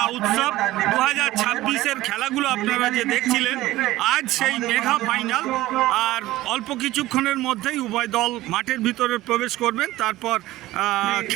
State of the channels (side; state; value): left; quieter; 16.6 dB